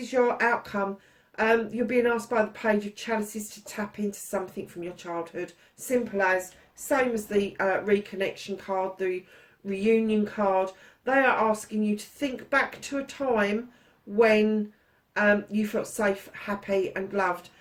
your outcome. You're being asked by the Page of Chalices to tap into something from your childhood. Simple as, same as the reconnection card, the reunion card. They are asking you to think back to a time when you felt safe, happy and loved.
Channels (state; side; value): identical; both; correlation 1.00